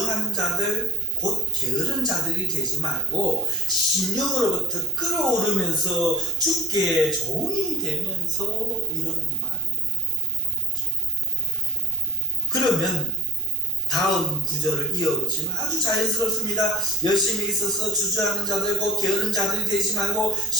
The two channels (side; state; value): right; noise; hum, 20 dB below the sound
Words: 자들 곧 게으른 자들이 되지 말고 심령으로부터 끓어오르면서 주께 종이 되면서 이런 말이 되는 거죠. 그러면 다음 구절을 이어보시면 아주 자연스럽습니다. 열심히 있어서 주저하는 자들 곧 게으른 자들이 되지 말고